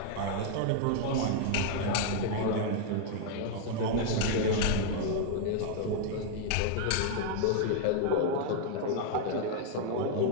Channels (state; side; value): different; both; correlation 0.00